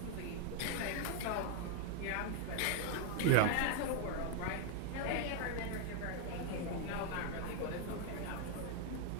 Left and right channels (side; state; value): both; different; correlation 0.01